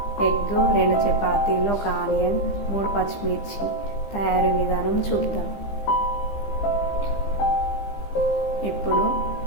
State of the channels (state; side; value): late; right; 15 ms